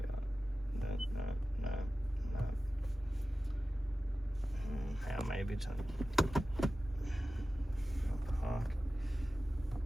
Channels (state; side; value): normal; both; correlation 0.95